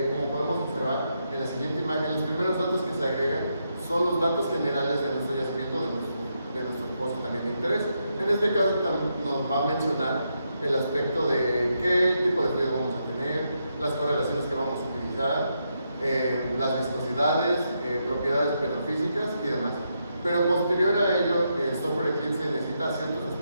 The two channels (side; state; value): both; inverted; correlation -0.81